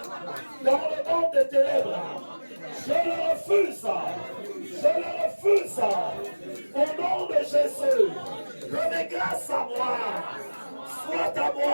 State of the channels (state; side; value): inverted; both; correlation -1.00